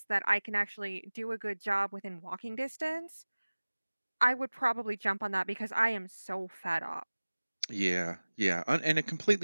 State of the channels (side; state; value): both; inverted; correlation -1.00